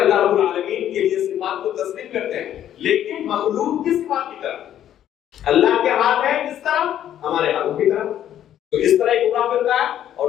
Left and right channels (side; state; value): right; quieter; 11.0 dB